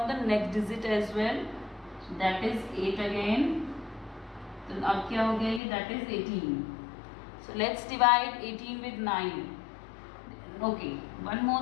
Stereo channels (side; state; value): right; drops out; at 5.6 s